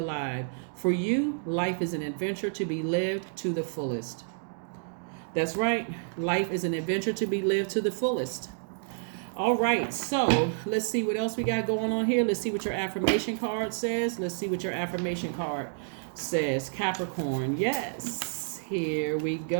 For you, life is an adventure to be lived to the fullest. That's right. Life is an adventure to be lived to the fullest. All right, so let's see what else we got going on here. Let's see what your affirmation card says. Capricorn. Yes, here we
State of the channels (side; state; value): left; silent; digital silence